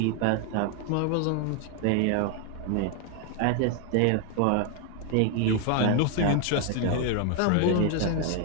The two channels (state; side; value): different; both; correlation 0.01